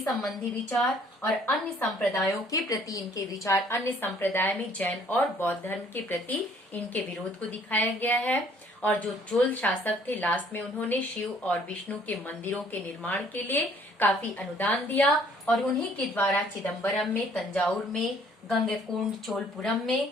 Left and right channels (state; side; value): normal; both; correlation 0.59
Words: विचार और अन्य संप्रदायों के प्रति इनके विचार, अन्य संप्रदाय में जैन और बौद्ध धर्म के प्रति इनके विरोध को दिखाया गया है। और जो चोल शासक थे, लास्ट में उन्होंने शिव और विष्णु के मंदिरों के निर्माण के लिए काफी अनुदान दिया और उन्हीं के द्वारा चिदम्बरम में, तंजावुर में, गंगैकोंड चोलपुरम में